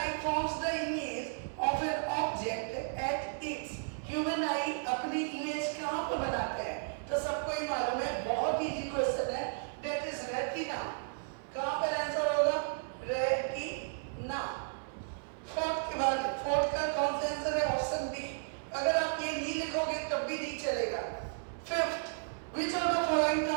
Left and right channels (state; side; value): silent; left; 55 dB below the other